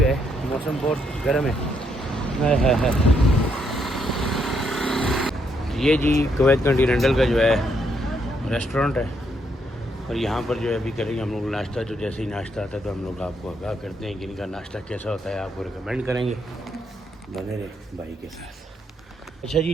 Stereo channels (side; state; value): both; normal; correlation 0.75